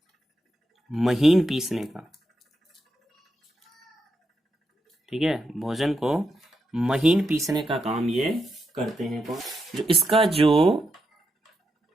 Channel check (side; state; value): both; normal; correlation 0.84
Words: महीन पीसने का। ठीक है, भोजन को महीन पीसने का काम ये करते हैं। कौन, जो इसका जो